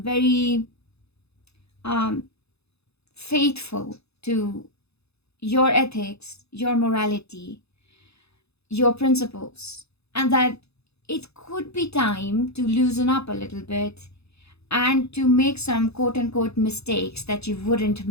very faithful to your ethics, your morality, your principles, and that it could be time to loosen up a little bit and to make some quote-unquote mistakes that you wouldn't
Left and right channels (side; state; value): right; late; 0.79 ms